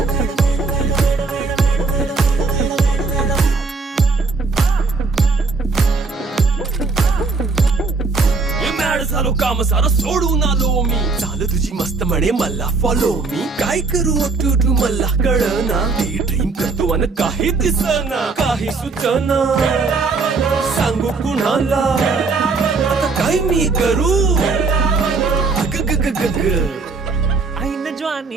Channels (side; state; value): left; quieter; 4.2 dB